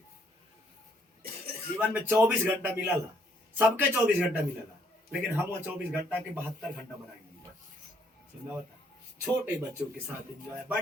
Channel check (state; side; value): normal; both; correlation 0.69